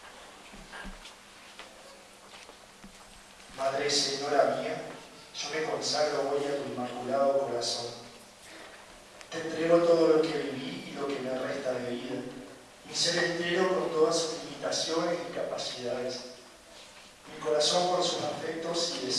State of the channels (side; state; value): both; identical; correlation 1.00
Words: Madre Señora mía, yo me consagro hoy a tu inmaculado corazón. Te entrego todo lo que viví y lo que me resta de vida, mi ser entero con todas sus limitaciones y capacidades, mi corazón por sus afectos y